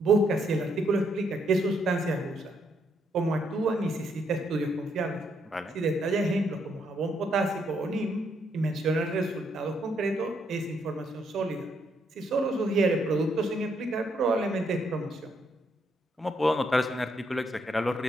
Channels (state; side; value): normal; both; correlation 0.74